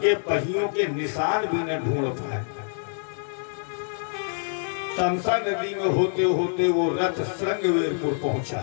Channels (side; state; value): right; silent; 61 dB below the other